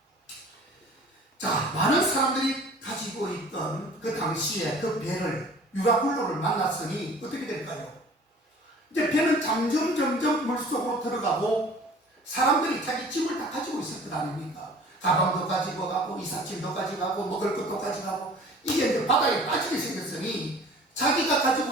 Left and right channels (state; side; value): normal; both; correlation 0.47